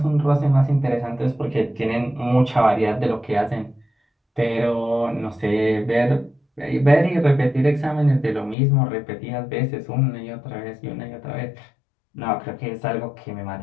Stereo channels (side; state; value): right; drops out; at 8.6 s